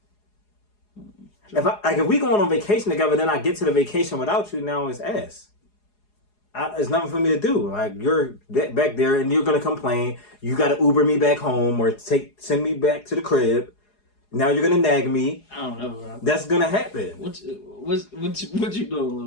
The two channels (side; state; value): right; late; 4.8 ms